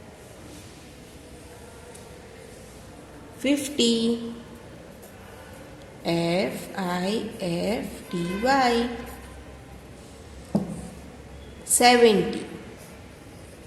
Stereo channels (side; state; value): both; identical; correlation 1.00